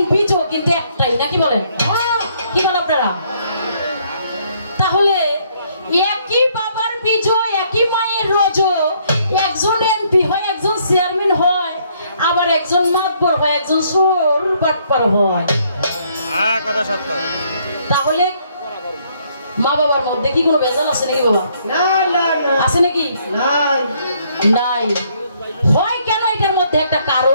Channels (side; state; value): both; inverted; correlation -0.67